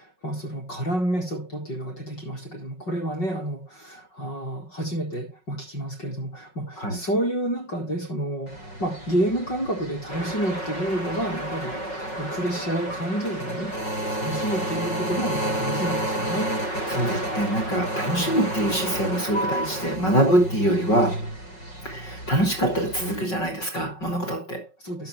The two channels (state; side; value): late; right; 5.4 ms